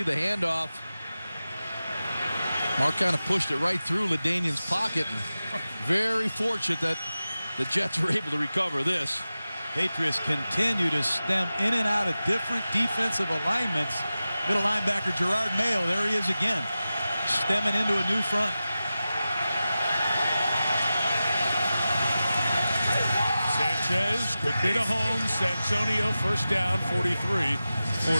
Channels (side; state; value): both; inverted; correlation -0.94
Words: the handoff. Mark kind of pushed it right through LaDainian's pocket. And very fortunate that the Jets were able to recover this. Patriots continue to stem in and out of different defensive alignments. Middle linebacker Gerard Mayo, there he is again, stemming into a new front. Sanchez quickly to Holmes. Santonio first down, 43 for